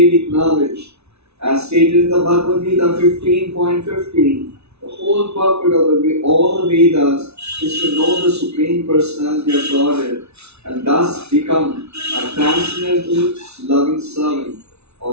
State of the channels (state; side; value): late; left; 0.80 ms